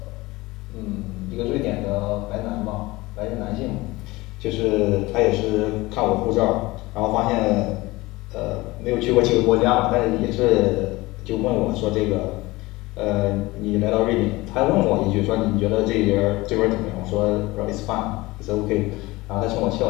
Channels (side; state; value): right; quieter; 20.8 dB